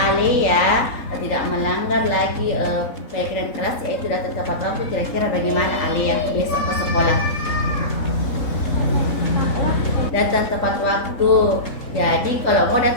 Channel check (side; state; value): right; late; 3.7 ms